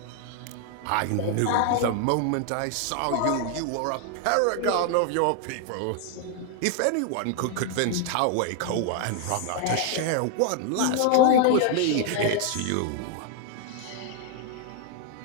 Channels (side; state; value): both; different; correlation 0.00